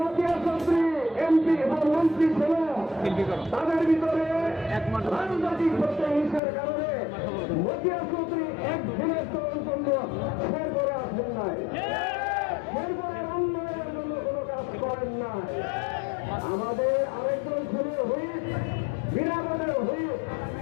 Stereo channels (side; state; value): right; drops out; at 6.4 s